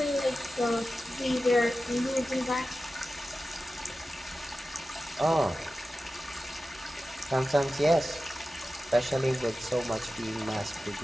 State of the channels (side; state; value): both; normal; correlation 0.94